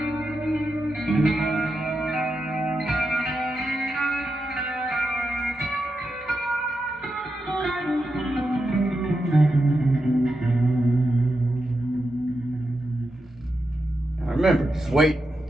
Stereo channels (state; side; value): normal; both; correlation 0.87